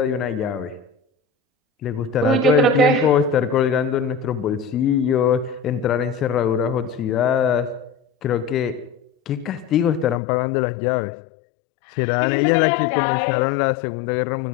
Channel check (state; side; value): drops out; right; at 10.2 s